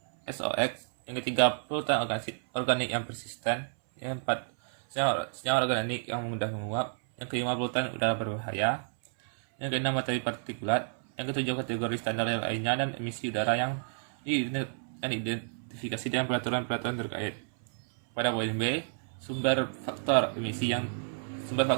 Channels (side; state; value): left; silent; 57 dB below the other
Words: SOX, yang ketiga polutan organik yang persisten, yang keempat senyawa organik yang mudah menguap, yang kelima polutan udara berbahaya, yang keenam materi partikulat, yang ketujuh kategori standar lainnya dan emisi udara yang diidentifikasi dalam peraturan terkait. Pada poin B, sumber faktor emisi yang